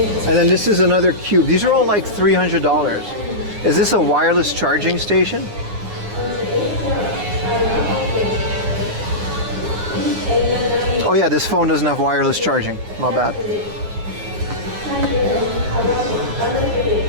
And then this is another cube. These are all like $300. Is this a wireless charging station? Oh yeah, this phone doesn't have wireless charging. My bad.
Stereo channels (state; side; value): late; left; 9.7 ms